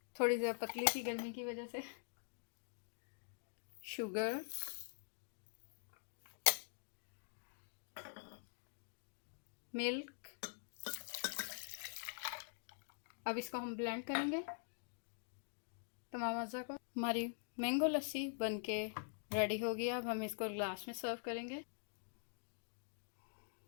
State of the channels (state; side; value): silent; right; digital silence